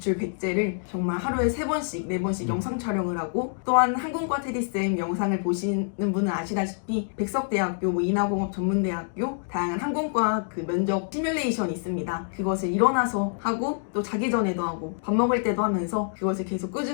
100제를 정말 하루에 3번씩 4번씩 영상 촬영을 하고 또한 항공과 테디쌤 영상을 보시는 분은 아시다시피 백석대학교, 인하공업 전문대학교 다양한 항공과 그 면접 시뮬레이션이 있습니다. 그것을 일어나서 하고 또 자기 전에도 하고 밥 먹을 때도 하면서 그것을 계속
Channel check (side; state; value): right; silent; digital silence